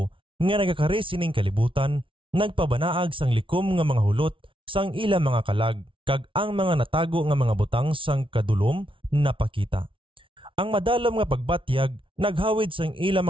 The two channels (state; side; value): late; left; 0.25 ms